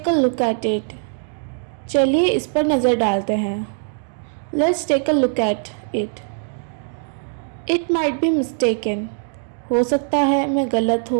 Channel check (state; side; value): silent; left; digital silence